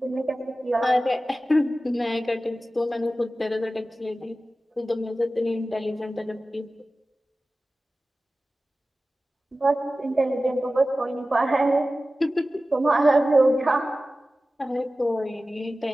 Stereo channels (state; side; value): normal; both; correlation 0.95